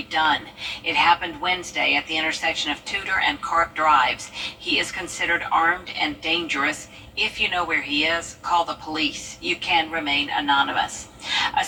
Dunn. It happened Wednesday at the intersection of Tudor and Carp Drives. He is considered armed and dangerous. If you know where he is, call the police. You can remain anonymous. A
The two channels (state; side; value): identical; both; correlation 1.00